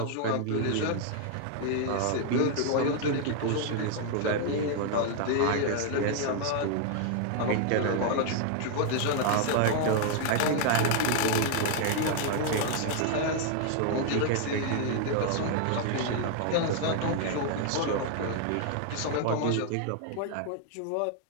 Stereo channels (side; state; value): both; different; correlation 0.00